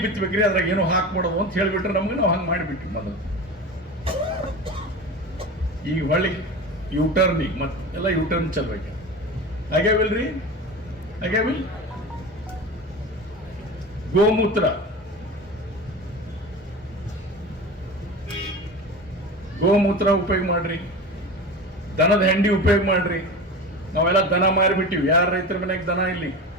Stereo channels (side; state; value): both; normal; correlation 0.30